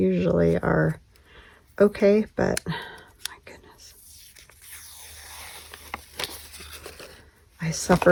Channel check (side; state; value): both; identical; correlation 1.00